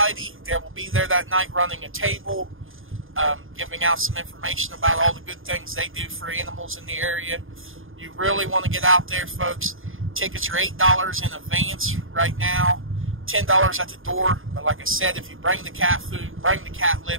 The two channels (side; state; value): left; late; 0.59 ms